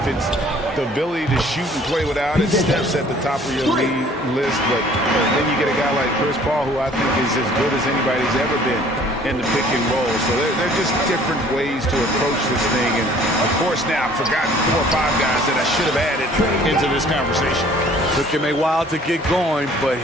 it's the ability to shoot and play without it, Steph's at the top of your league list. But then you get a guy like Chris Paul, who I think is as good as anybody's ever been in the pick and roll. So they're just different ways to approach this thing. And of course, now I've forgotten 4 or 5 guys that I should have added into this conversation. Took him a while to get going, but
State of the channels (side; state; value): both; normal; correlation 0.54